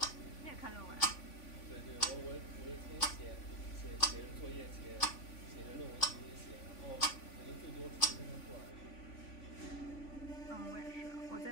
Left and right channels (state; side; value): late; right; 3.5 ms